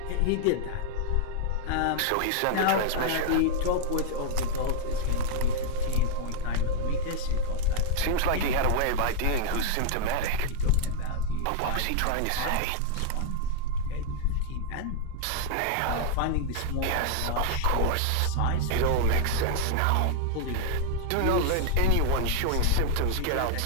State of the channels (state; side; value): different; both; correlation 0.00